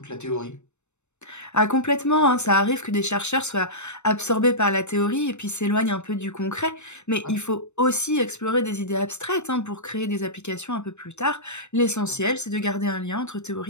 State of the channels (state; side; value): late; right; 0.82 ms